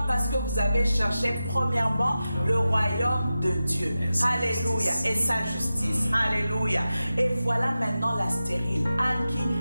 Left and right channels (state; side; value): inverted; both; correlation -0.93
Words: Parce que vous avez cherché premièrement le royaume de Dieu. Alléluia. Et sa justice. Alléluia. Et voilà maintenant la stérile.